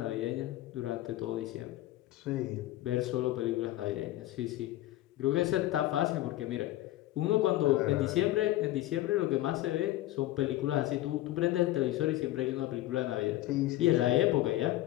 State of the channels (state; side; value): quieter; right; 15.5 dB